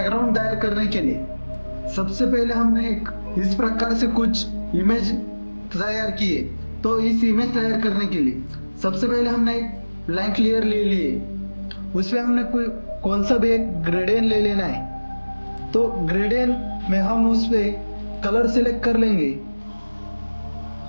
तैयार करने के लिए सबसे पहले हमने एक इस प्रकार से कुछ इमेज तैयार किए। तो इस इमेज तैयार करने के लिए सबसे पहले हमने एक ब्लैंक लेयर ले लिए। उसमें हमने कौन सा भी एक ग्रेडियंट ले लेना है। तो ग्रेडियंट में हम उस पे कलर सिलेक्ट कर लेंगे।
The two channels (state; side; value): inverted; both; correlation -1.00